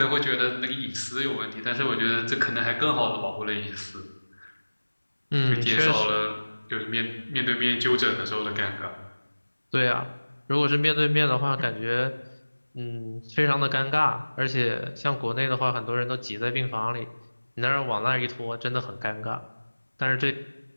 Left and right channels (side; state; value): both; inverted; correlation -1.00